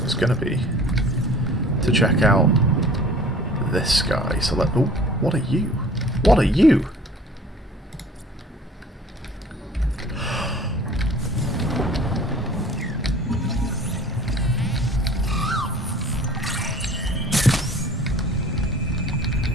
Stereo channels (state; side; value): normal; both; correlation 0.48